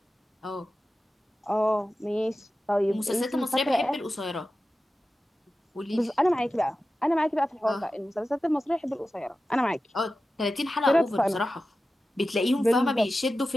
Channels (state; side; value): normal; both; correlation 0.94